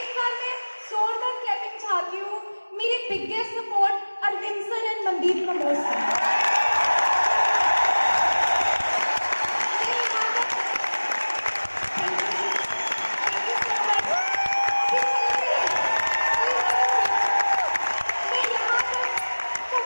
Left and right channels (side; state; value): both; inverted; correlation -1.00